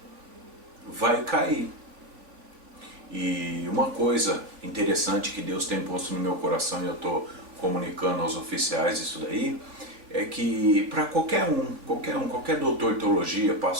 vai cair. E uma coisa interessante que Deus tem posto no meu coração e eu estou comunicando aos oficiais isso daí, é que para qualquer doutor de teologia,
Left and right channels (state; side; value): late; left; 3.4 ms